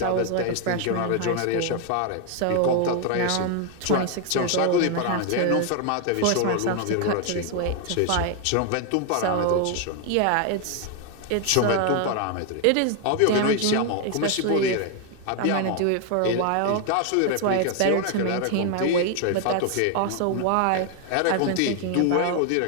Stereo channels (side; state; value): both; different; correlation 0.01